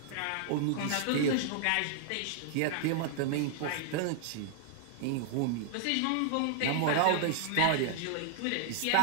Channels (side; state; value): both; different; correlation 0.00